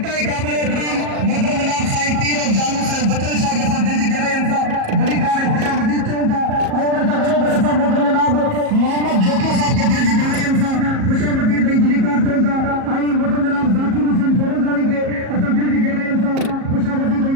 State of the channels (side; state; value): left; late; 37 ms